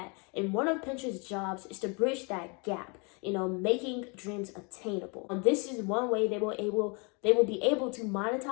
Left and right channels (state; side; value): quieter; right; 32.4 dB